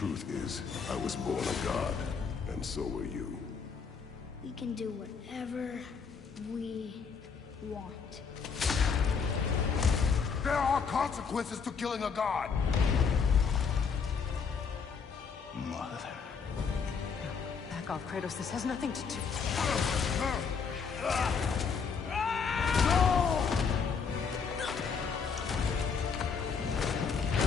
is, I was born a god, and so were you. We can do whatever we want. There are consequences to killing a god! Mother. Back off, Kratos. This has nothing to do...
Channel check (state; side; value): quieter; right; 5.9 dB